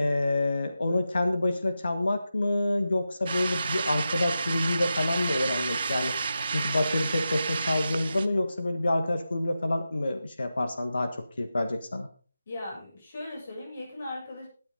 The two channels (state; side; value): inverted; both; correlation -0.90